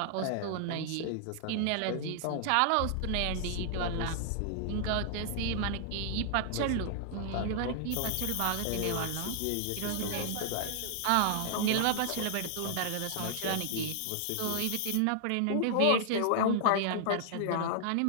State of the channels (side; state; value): both; different; correlation -0.01